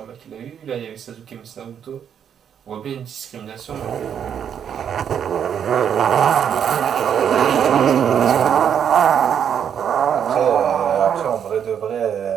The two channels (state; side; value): quieter; left; 8.4 dB